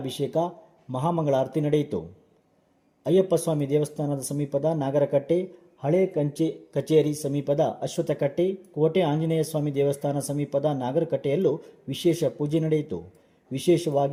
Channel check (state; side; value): identical; both; correlation 1.00